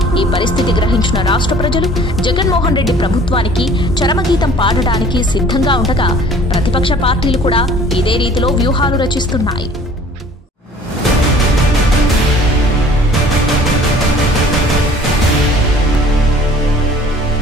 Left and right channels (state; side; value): normal; both; correlation 0.51